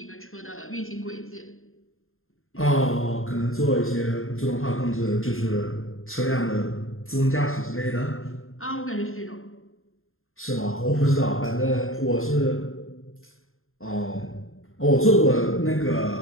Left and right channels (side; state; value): right; late; 0.61 ms